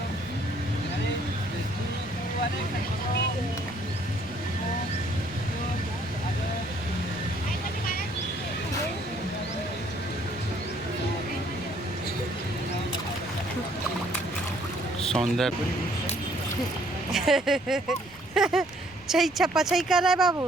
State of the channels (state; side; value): noise; right; rumble, 26 dB below the sound